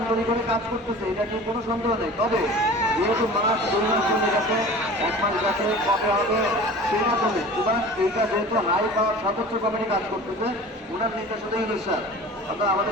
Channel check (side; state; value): both; normal; correlation 0.40